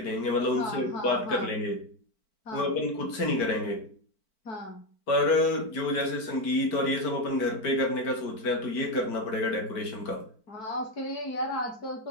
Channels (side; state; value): right; late; 4.5 ms